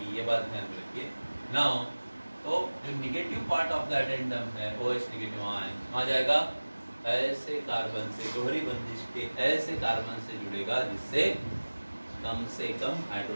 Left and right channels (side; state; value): both; inverted; correlation -1.00